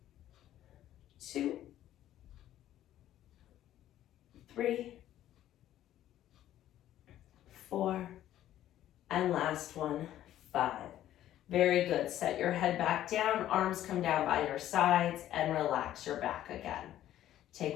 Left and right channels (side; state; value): right; quieter; 12.6 dB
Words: 2, 3, 4, and last one, 5. Very good. Set your head back down, arms come down by your sides, and relax your back again.